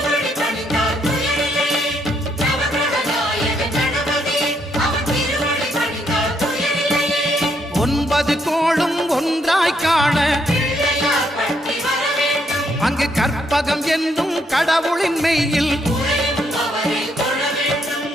ஒன்பது கோளும் ஒன்றாய் காண அங்கு கற்பகம் என்னும் கடவுளின் மெய்யில்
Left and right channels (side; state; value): both; normal; correlation 0.74